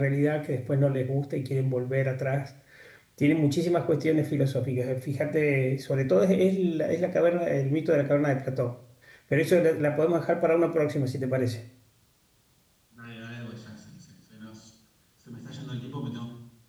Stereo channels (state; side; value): identical; both; correlation 1.00